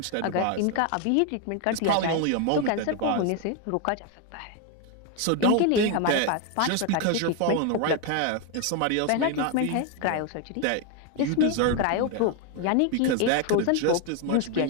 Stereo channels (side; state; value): both; different; correlation 0.01